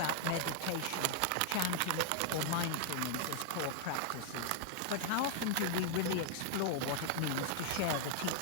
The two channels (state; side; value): different; both; correlation 0.00